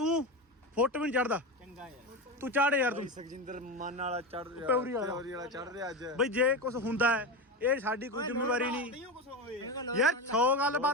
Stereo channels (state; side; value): normal; both; correlation 0.19